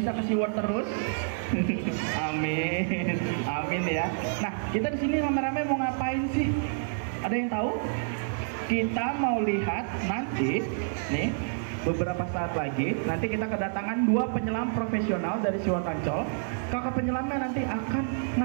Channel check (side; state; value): left; silent; 59 dB below the other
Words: ke SeaWorld terus. Amin. Amin ya. Nah, kita di sini rame-rame mau ngapain sih? Ada yang tahu? Kita mau lihat nanti nih, beberapa saat lagi nanti kita kedatangan 2 penyelam profesional dari SeaWorld Ancol. Kakak penyelamnya nanti akan